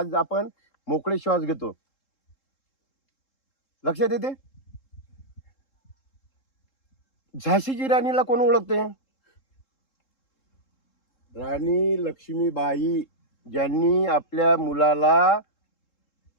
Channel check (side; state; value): right; late; 3.7 ms